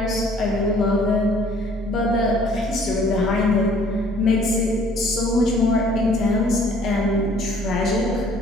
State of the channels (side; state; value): both; normal; correlation 0.57